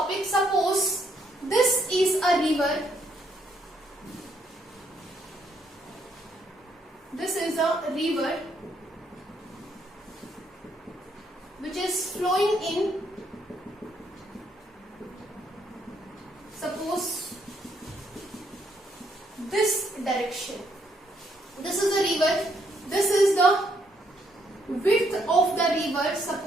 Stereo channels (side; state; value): both; normal; correlation 0.72